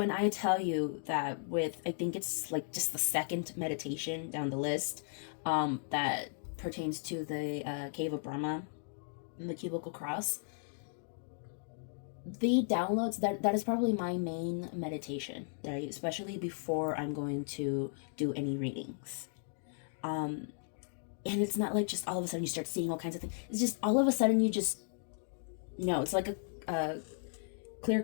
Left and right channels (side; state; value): right; silent; digital silence